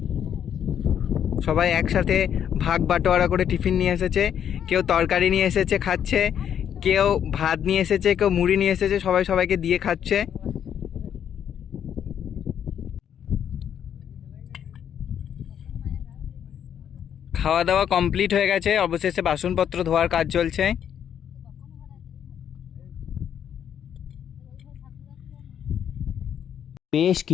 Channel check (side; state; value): right; quieter; 9.1 dB